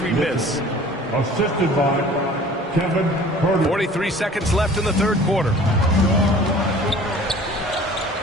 miss. Assisted by Kevin Herder. 43 seconds left in the third quarter.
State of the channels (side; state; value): both; normal; correlation 0.48